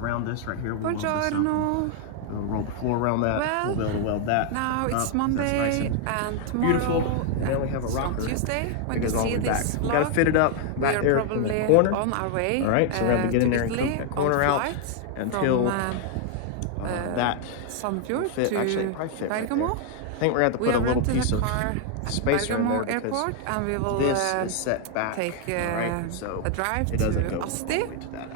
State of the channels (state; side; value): different; both; correlation 0.00